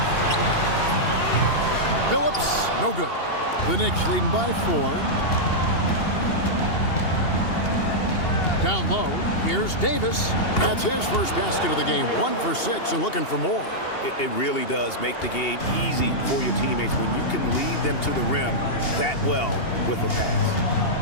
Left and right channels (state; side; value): late; right; 2.8 ms